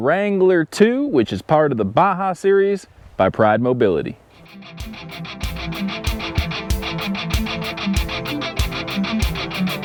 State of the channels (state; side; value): identical; both; correlation 1.00